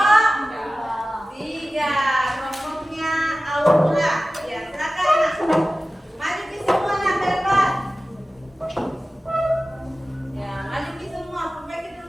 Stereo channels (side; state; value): both; normal; correlation 0.96